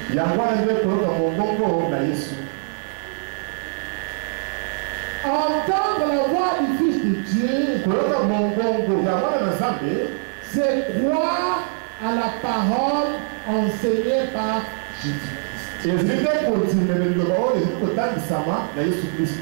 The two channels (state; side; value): silent; left; digital silence